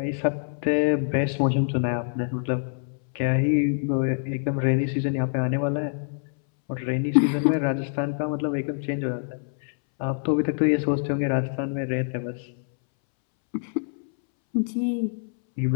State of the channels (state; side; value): silent; right; 61 dB below the other